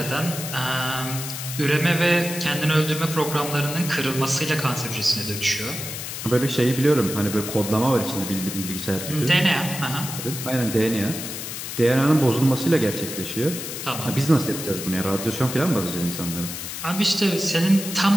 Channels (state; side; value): noise; left; hiss, 7 dB below the sound